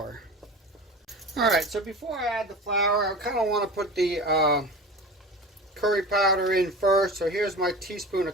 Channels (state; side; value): normal; both; correlation 0.34